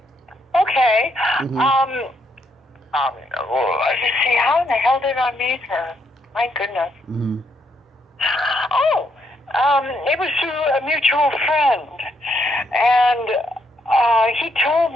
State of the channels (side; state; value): both; normal; correlation 0.75